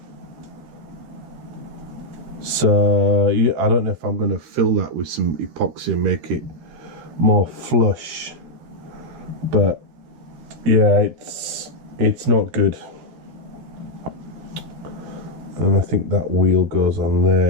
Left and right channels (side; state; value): left; late; 13 ms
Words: So yeah, I don't know if I'm going to fill that with some epoxy and make it more flush, but yeah, it's not good. And I think that wheel goes on